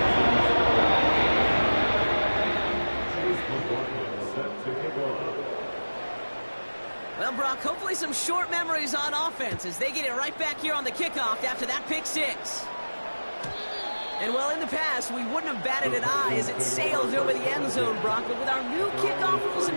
Well, Brock, hopefully some short memories on offense as they get it right back here on the kickoff after that pick 6. And, well, in the past, we wouldn't have batted an eye as it sails over the end zone, Brock. But with our new kickoff rules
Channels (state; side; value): inverted; both; correlation -1.00